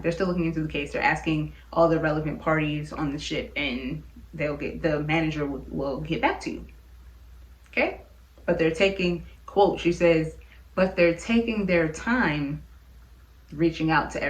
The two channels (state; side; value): identical; both; correlation 1.00